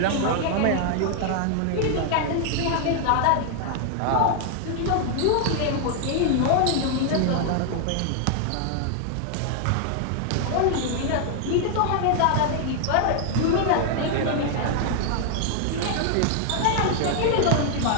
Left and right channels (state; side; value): different; both; correlation 0.00